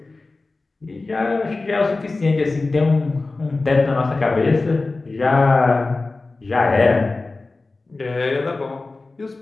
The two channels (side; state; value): right; quieter; 3.4 dB